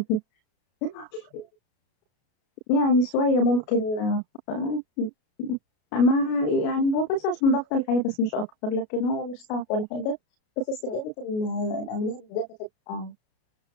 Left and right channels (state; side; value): late; right; 33 ms